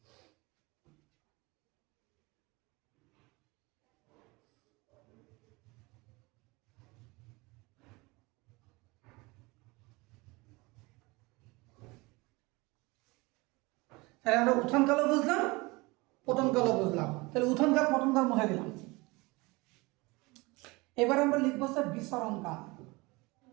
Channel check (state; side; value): quieter; left; 24.2 dB